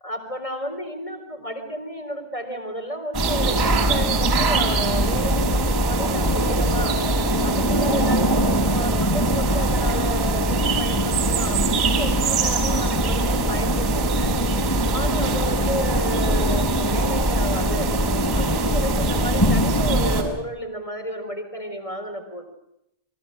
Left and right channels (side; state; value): right; late; 1.0 ms